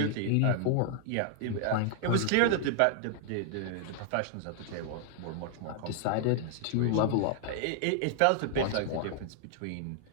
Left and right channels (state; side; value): different; both; correlation 0.00